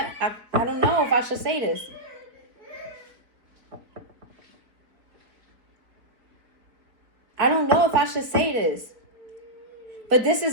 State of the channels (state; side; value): late; left; 4.4 ms